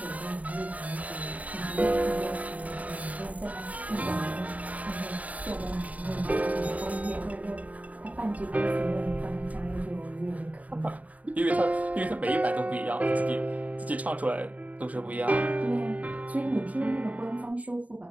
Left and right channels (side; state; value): left; late; 0.071 ms